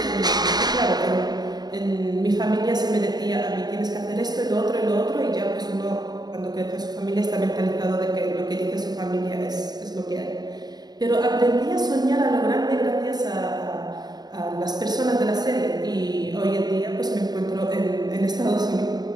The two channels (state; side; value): late; left; 0.20 ms